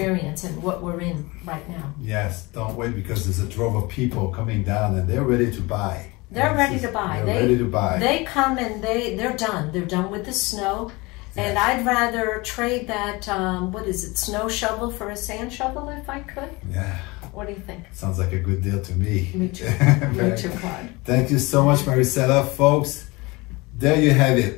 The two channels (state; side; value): quieter; right; 24.0 dB